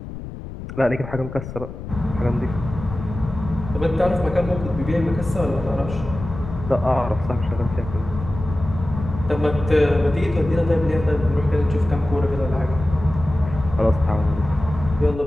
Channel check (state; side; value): noise; left; rumble, 10 dB below the sound